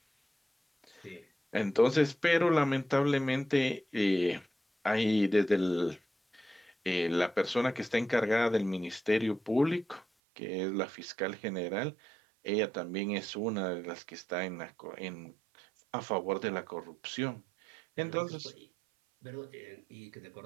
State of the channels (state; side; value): drops out; left; at 10.1 s